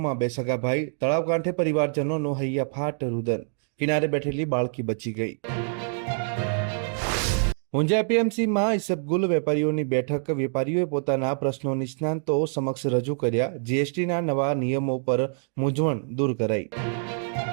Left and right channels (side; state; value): left; silent; 61 dB below the other